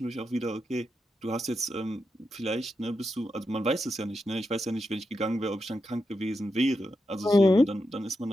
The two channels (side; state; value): both; normal; correlation 0.87